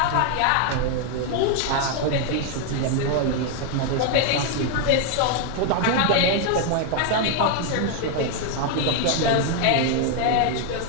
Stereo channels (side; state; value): both; different; correlation 0.01